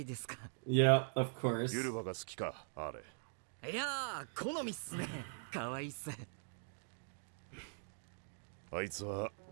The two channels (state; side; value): silent; left; digital silence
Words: ですか。Yeah, of course. ユルバが好きか、あれ。いやー、好みっすね。可愛いっす。あいつは